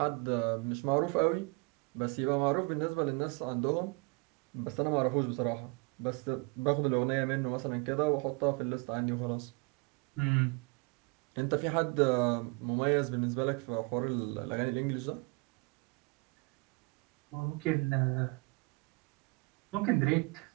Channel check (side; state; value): left; quieter; 29.7 dB